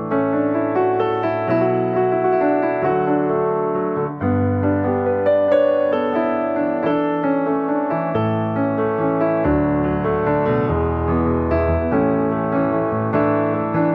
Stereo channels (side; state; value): both; identical; correlation 1.00